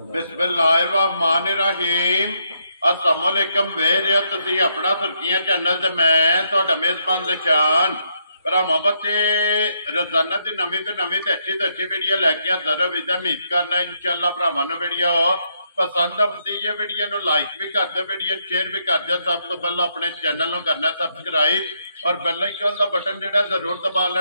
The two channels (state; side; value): inverted; both; correlation -0.76